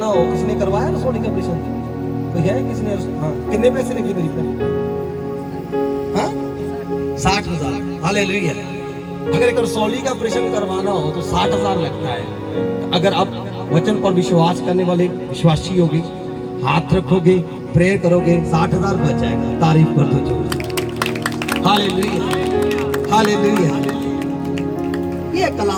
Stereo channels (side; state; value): both; identical; correlation 1.00